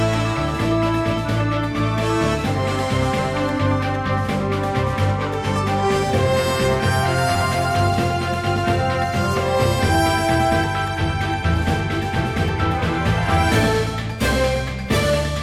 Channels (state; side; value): identical; both; correlation 1.00